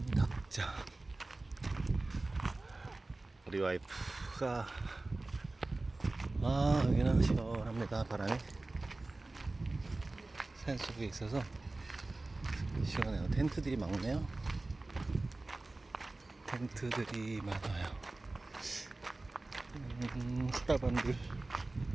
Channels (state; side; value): quieter; left; 3.1 dB